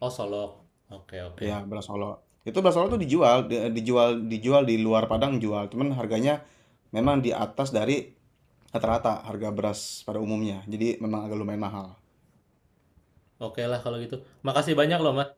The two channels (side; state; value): both; identical; correlation 1.00